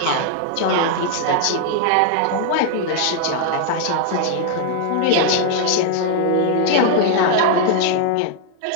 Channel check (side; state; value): both; different; correlation 0.00